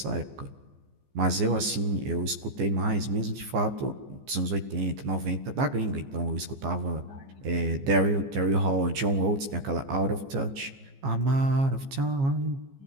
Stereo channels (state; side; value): late; left; 15 ms